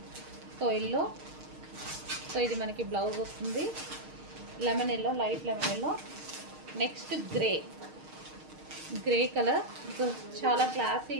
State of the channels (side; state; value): left; late; 6.5 ms